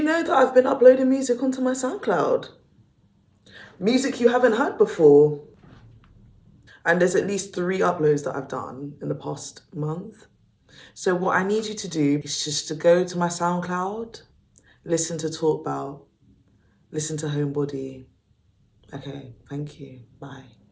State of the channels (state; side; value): identical; both; correlation 1.00